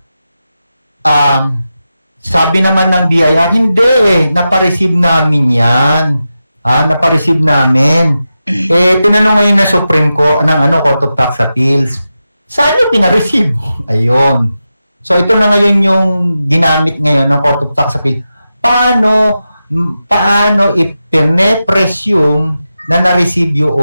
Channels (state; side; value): inverted; both; correlation -0.91